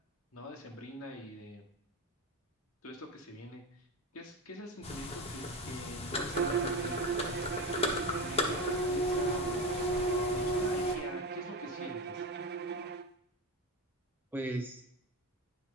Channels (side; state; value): both; normal; correlation 0.21